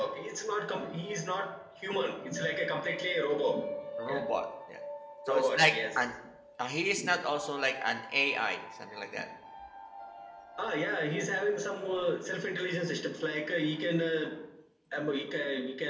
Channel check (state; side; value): identical; both; correlation 1.00